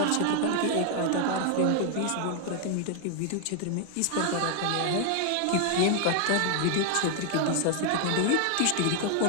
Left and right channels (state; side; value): different; both; correlation 0.00